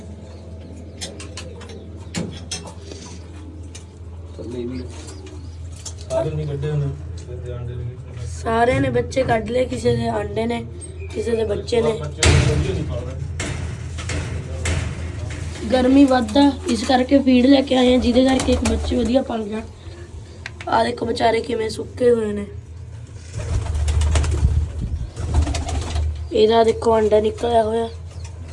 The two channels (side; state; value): both; identical; correlation 1.00